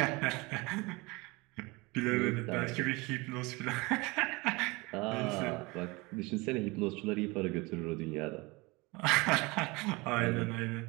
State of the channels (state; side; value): quieter; left; 24.7 dB